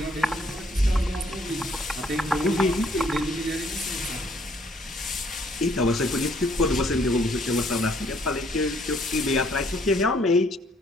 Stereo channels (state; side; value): normal; both; correlation 0.65